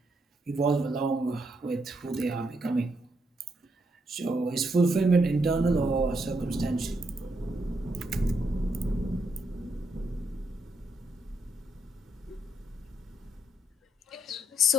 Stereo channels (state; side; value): normal; both; correlation 0.77